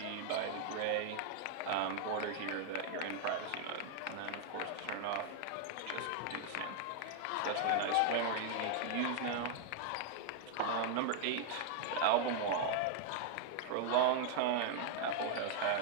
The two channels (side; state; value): both; different; correlation 0.00